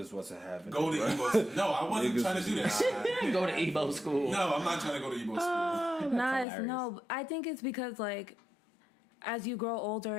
wasn't having. Go to Igbo. No, I wasn't trying to do that. Go to Igbo school. No, I'm not trying to go to Igbo school. Nice. No, I think it's because as you grow older,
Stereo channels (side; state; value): right; drops out; at 6.5 s